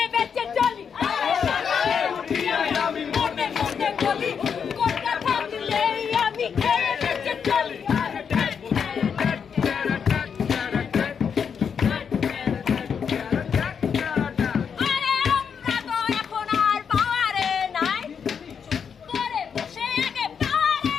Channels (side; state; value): right; quieter; 6.9 dB